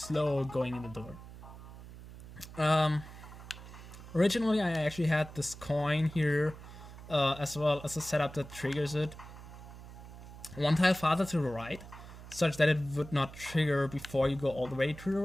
going in the door. Originally I actually had this coin here, as well as a setup that triggers it one tile farther to the right, such that it would not trigger before you go all the way to the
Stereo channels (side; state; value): right; noise; hum, 15 dB below the sound